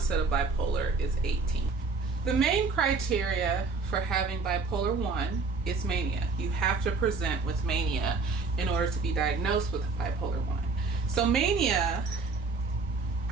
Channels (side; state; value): left; quieter; 4.3 dB